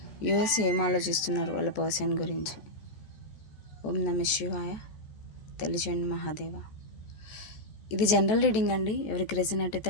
US ఏం ఆలోచిస్తున్నారు వాళ్ళ పర్సన్ గురించి? ఓం నమ శివాయ. తెలియజేయండి మహాదేవ. ఇది జనరల్ రీడింగ్ అండి, ఎవరికి రెజనేట్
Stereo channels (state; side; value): late; right; 14 ms